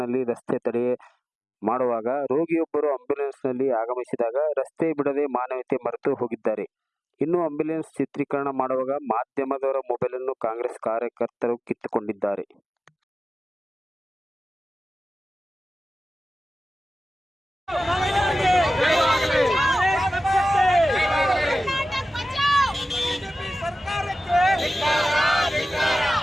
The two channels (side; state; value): both; normal; correlation 0.96